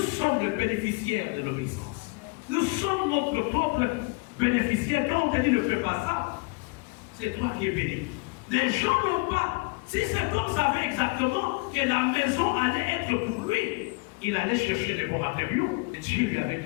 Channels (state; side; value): quieter; right; 28.1 dB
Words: les bénéficiaires de l'obéissance. Nous sommes notre propre bénéficiaire. Quand on te dit ne fais pas ça, c'est toi qui es béni. Les gens n'ont pas. Si cet homme savait exactement que la maison allait être pour lui, il allait chercher les bons matériaux. Et Dieu lui avait